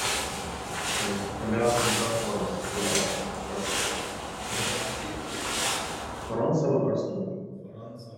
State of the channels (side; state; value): both; identical; correlation 1.00